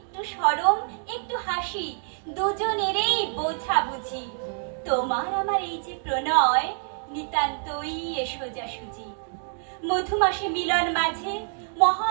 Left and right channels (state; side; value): silent; left; digital silence